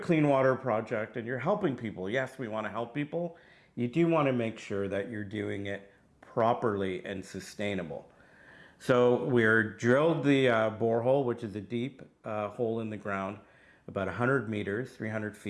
water project and you're helping people, yes, we want to help people. You do want to make sure that you're doing it properly and sustainable. So we're drilled the borehole, which is a deep hole in the ground, about 100 meters, 300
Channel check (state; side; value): identical; both; correlation 1.00